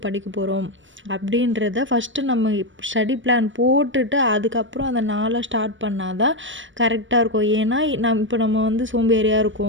படிக்க போகிறோம் அப்படின்றத ஃபஸ்ட்டு நம்ம ஸ்டடி பிளான் போட்டுட்டு அதுக்கப்புறம் அந்த நாளை ஸ்டார்ட் பண்ணால் தான் கரெக்டாக இருக்கும். ஏன்னா இப்போ நம்ம வந்து சோம்பேறியாக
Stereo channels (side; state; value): left; late; 0.56 ms